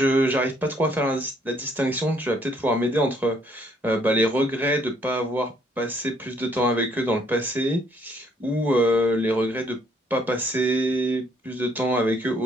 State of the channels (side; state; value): both; normal; correlation 0.66